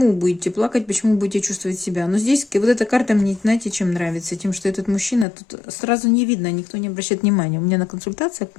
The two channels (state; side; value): drops out; right; at 5.2 s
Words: будете плакать, почему будете чувствовать себя. Но здесь вот эта карта мне, знаете, чем нравится? Тем, что этот мужчина, тут сразу не видно, никто не обращает внимания. У меня на консультациях